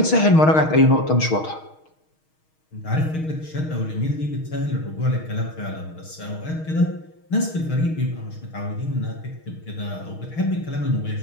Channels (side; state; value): right; late; 6.4 ms